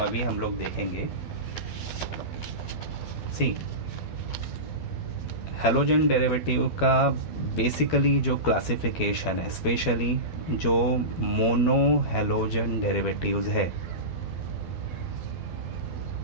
हम लोग देखेंगे। सी, हेलोजन डेरिवेटिव का बेसिकली जो क्लासिफिकेशन है, स्पेशली जो मोनो हेलोजन डेरिवेटिव्स है,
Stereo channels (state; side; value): late; right; 12 ms